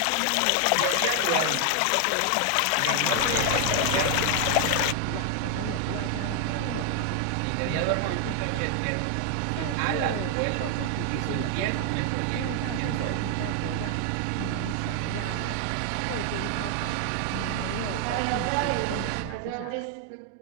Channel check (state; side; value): different; both; correlation 0.00